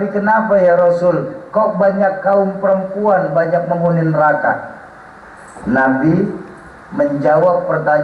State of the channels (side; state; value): both; identical; correlation 1.00